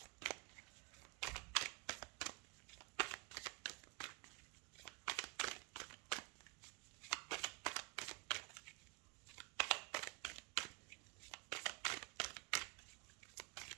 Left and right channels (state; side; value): quieter; left; 29.6 dB